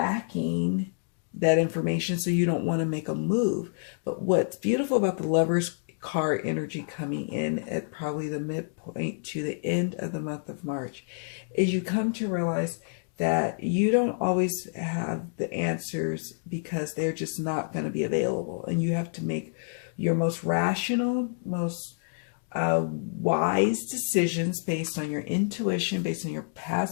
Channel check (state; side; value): silent; right; digital silence